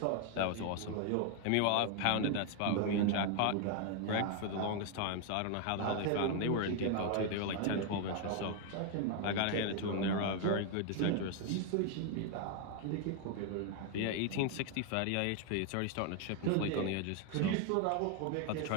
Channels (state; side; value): different; both; correlation 0.00